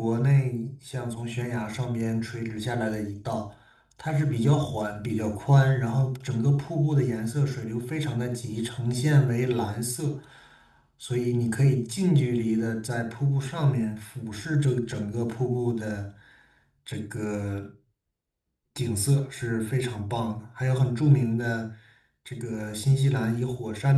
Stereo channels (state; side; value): identical; both; correlation 1.00